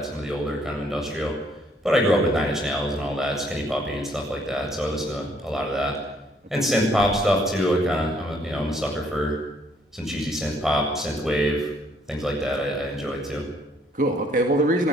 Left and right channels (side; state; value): both; normal; correlation 0.66